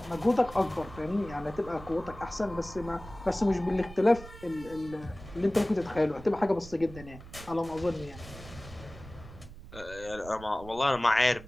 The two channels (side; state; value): right; noise; rumble, 16 dB below the sound